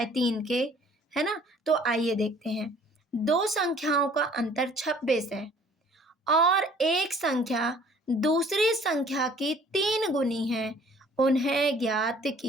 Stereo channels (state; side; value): normal; both; correlation 0.55